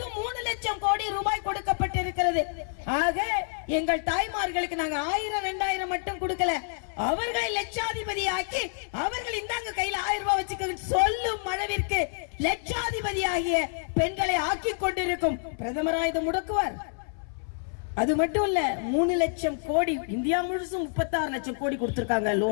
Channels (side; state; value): right; silent; 59 dB below the other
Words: 3 லட்சம் கோடி ரூபாய் கொடுக்கப்பட்டிருக்கிறது. ஆக எங்கள் தாய்மார்களுக்கு நாங்க 1000 2000 மட்டும் கொடுக்கல, அவர்களை லட்சாதிபதி ஆக்கி அவர்கள் இந்தாங்க கையில 1000 ரூபாய் வச்சுக்க சொல்லும் அளவிற்கு லட்சாதிபதி ஆகிய பெண்களை ஆக்கி கொண்டிருக்கும் பிரதமரா இதை முடக்குவார். அது மட்டும் இல்ல, 3 லட்சம் கோடி இந்தியா முழுசும் 36 லட்சம் கோடி கொடுத்திருக்காங்க